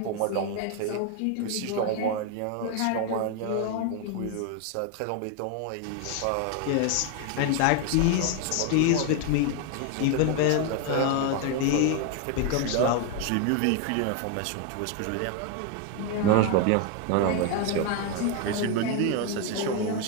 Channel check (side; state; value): both; different; correlation 0.01